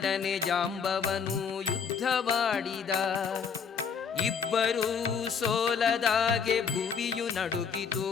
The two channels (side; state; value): right; quieter; 6.5 dB